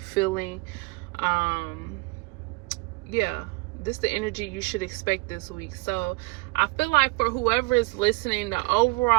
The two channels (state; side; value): quieter; left; 25.8 dB